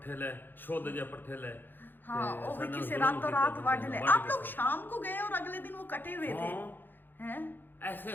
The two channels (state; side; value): late; right; 0.094 ms